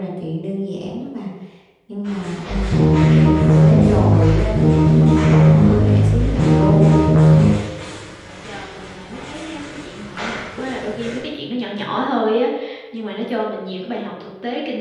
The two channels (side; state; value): both; identical; correlation 1.00